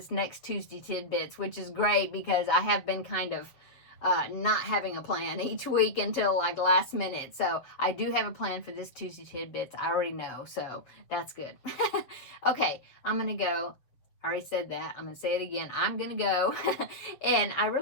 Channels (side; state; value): right; late; 7.4 ms